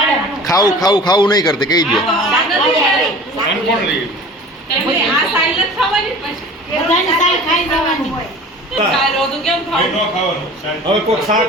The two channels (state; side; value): normal; both; correlation 0.41